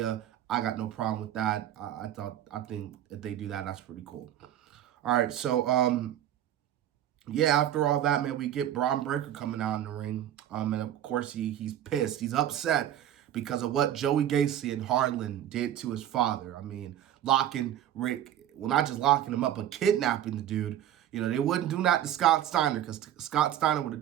I got no problem with that. I think if they do that, that's pretty cool. All right, so yeah, after all that, man, we get Braun Breaker coming out in the ring. And of course he's pissed. He's upset because of what Joey Gacy and Harlan did to his father. I mean, locking Rick, well, not just locking him up, but kidnapping the dude. They wouldn't do that to Scott Steiner because Scott Steiner would have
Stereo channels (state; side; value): quieter; left; 11.4 dB